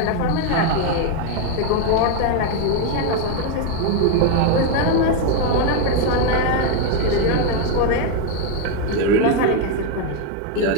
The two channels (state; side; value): different; both; correlation 0.01